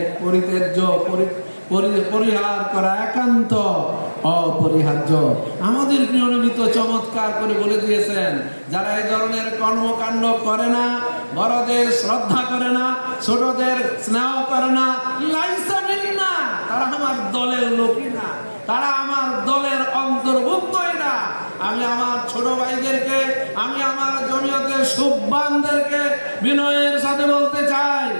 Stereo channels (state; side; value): inverted; both; correlation -1.00